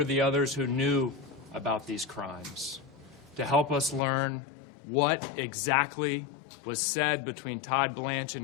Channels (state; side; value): drops out; right; at 4.0 s